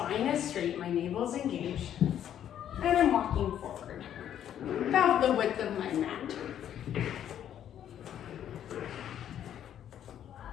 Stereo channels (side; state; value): right; quieter; 10.2 dB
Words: is straight, my navel is engaged, and I'm walking forward about the width of my mat.